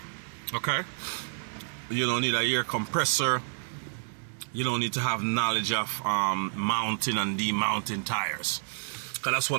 Okay, you don't need an air compressor. You don't need to have knowledge of mounting and demounting tires, because that's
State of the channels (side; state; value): left; silent; digital silence